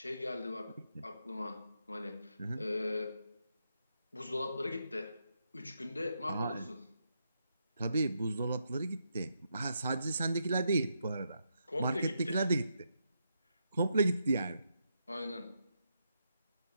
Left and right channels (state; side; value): inverted; both; correlation -0.81